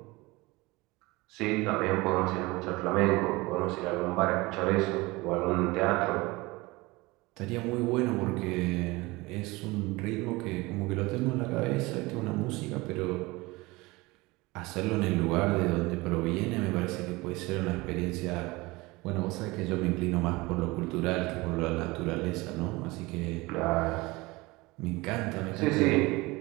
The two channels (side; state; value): left; quieter; 22.5 dB